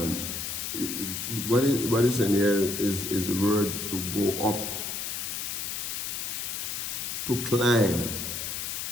what is in here is the word to go up, to climb,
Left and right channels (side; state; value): left; noise; hiss, 4 dB below the sound